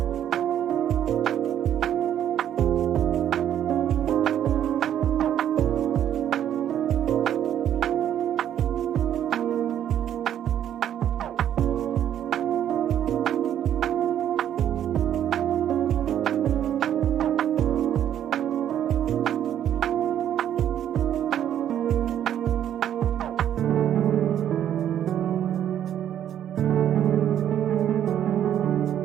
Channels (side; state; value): left; quieter; 10.4 dB